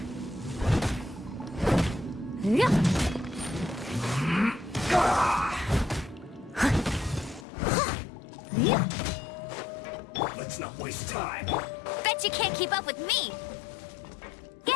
Let's not waste time. Bet you can't keep up with me.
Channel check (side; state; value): right; drops out; at 7.5 s